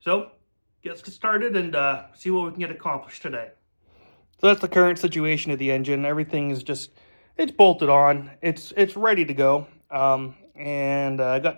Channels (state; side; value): inverted; both; correlation -1.00